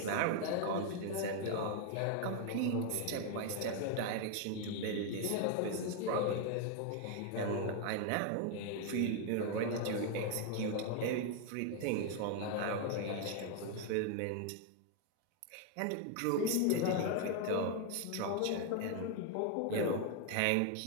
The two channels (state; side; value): different; both; correlation 0.01